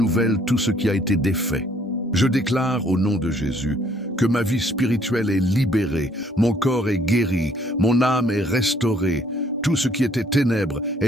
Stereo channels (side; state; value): both; normal; correlation 0.63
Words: tout ce qui a été défait. Je déclare au nom de Jésus que ma vie spirituelle est libérée, mon corps est guéri, mon âme est restaurée. Tout ce qui était ténèbres